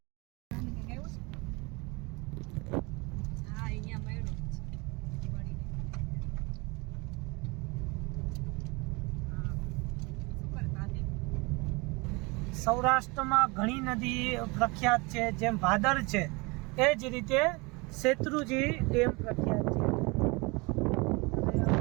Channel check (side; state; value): left; quieter; 26.9 dB